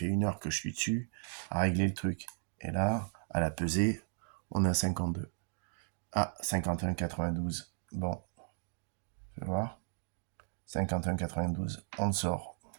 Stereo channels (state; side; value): silent; left; digital silence